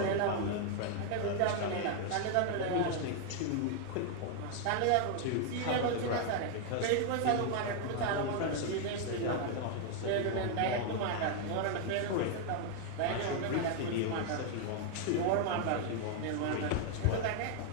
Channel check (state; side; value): different; both; correlation 0.00